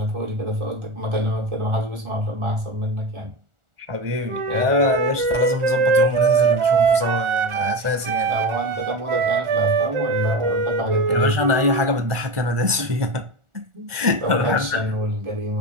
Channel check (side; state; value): left; late; 1.4 ms